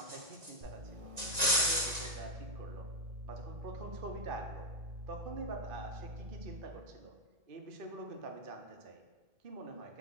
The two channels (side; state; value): left; late; 1.9 ms